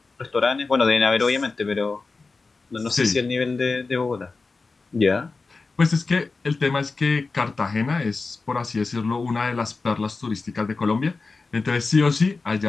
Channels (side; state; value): right; quieter; 4.0 dB